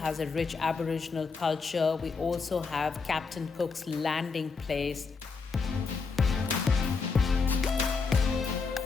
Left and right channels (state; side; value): quieter; right; 4.8 dB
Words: a rich Aboriginal culture. We also have Captain Cook's landing place.